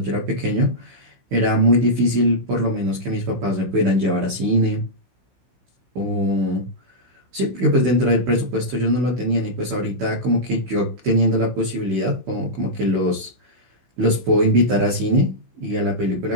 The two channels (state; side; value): late; left; 16 ms